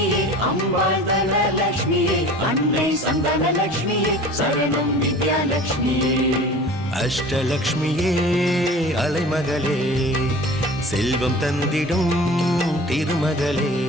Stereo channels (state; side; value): normal; both; correlation 0.41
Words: அம்பாள் தனலட்சுமியே அன்னை சந்தானலட்சுமியே சரணம் வித்யாலட்சுமியே அஷ்டலக்ஷ்மியே அலைமகளே செல்வம் தந்திடும் திருமகளே